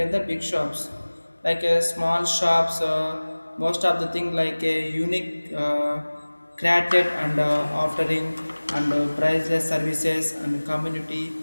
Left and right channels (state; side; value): inverted; both; correlation -1.00